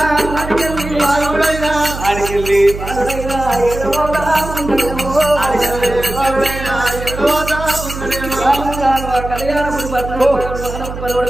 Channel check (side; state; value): right; noise; hum, 9 dB below the sound